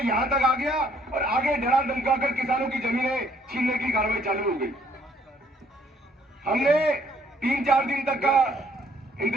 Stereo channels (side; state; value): both; normal; correlation 0.64